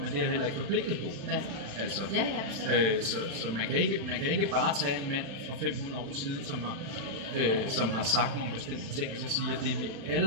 det er jeg heller ikke forpligtet på. Ja. Altså, så man kan ikke bare tage en mand fra 500 år siden, som har sagt nogle bestemte ting, og så sige, at det vi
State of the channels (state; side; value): late; left; 36 ms